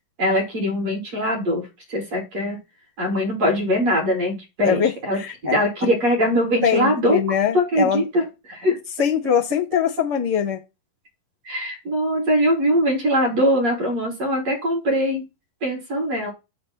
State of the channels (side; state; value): left; late; 11 ms